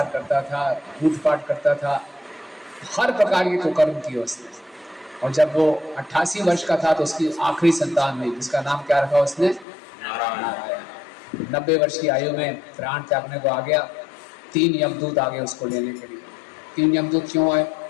करता था, लूटपाट करता था, हर प्रकार के कुकर्म किए उसने। और जब वो 88 वर्ष का था तो उसकी आखिरी संतान हुई, जिसका नाम क्या रखा उसने? नारायण। 90 वर्ष की आयु में प्राण त्यागने को आ गया। 3 यमदूत आ गए उसको लेने के लिए। 3 यमदूत क्यों आए?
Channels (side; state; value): right; drops out; at 9.7 s